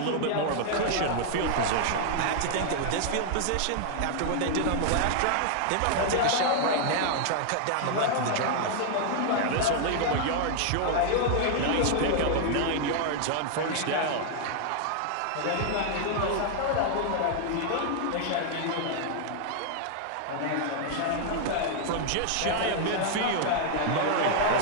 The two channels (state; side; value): different; both; correlation 0.00